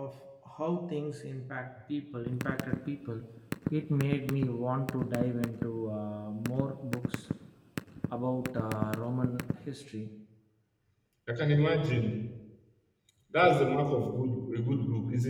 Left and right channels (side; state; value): both; identical; correlation 1.00